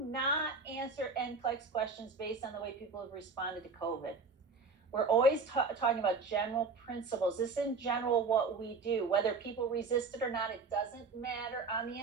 answer NCLEX questions based on the way people have responded to COVID. We're always talking about general principles. This is in general what we do. Whether people resist it or not, it doesn't matter on the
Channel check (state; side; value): quieter; left; 4.3 dB